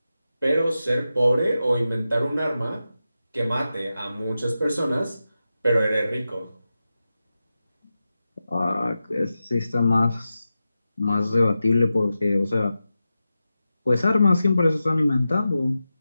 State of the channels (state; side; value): inverted; both; correlation -0.92